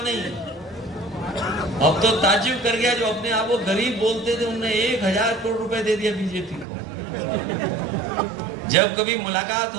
नहीं है। अब तो ताज्जुब कर गया, जो अपने आप को गरीब बोलते थे उन्होंने 1000 करोड़ रुपए दे दिया बीजेपी को। जब कभी मुलाकात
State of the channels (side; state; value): left; drops out; at 6.7 s